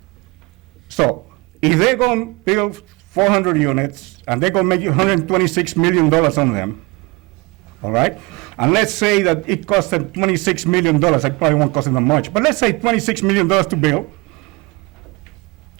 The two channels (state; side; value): quieter; left; 25.7 dB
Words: So, if they're going to build 400 units, and they're going to make $126 million on them, all right? And let's say that it cost them $26 million. It probably won't cost them that much, but let's say $26 million to build.